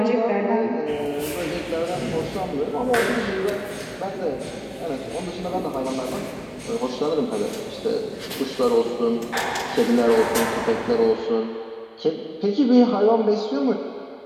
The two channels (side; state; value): both; identical; correlation 1.00